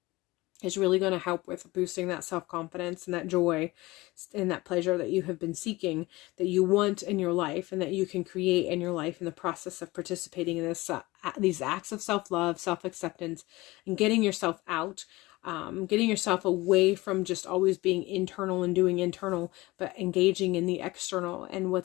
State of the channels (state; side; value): quieter; right; 20.8 dB